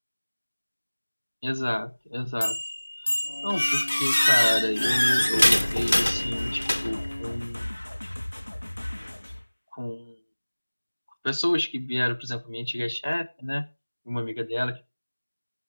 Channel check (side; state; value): both; inverted; correlation -1.00